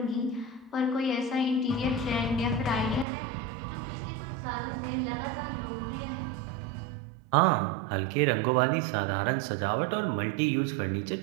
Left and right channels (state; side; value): drops out; left; at 3.1 s